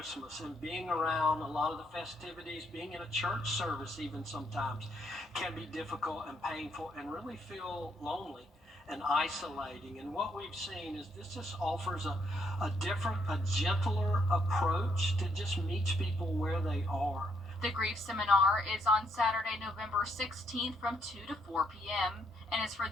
and being around a lot of the festivities, being in a church service even sometimes, can be difficult and painful and really feel lonely and isolating. And what we've seen is this just offers a different, a gentler approach to just meet people where they are. The grief seminar is on Saturday, November 16th from 2 to 4 p.m. and is for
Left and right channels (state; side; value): normal; both; correlation 0.73